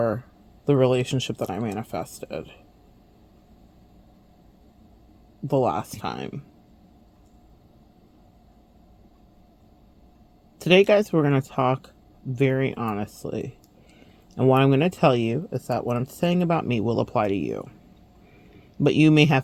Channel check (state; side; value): identical; both; correlation 1.00